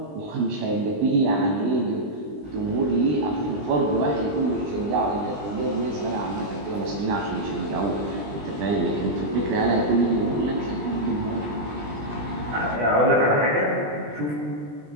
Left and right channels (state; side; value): late; left; 20 ms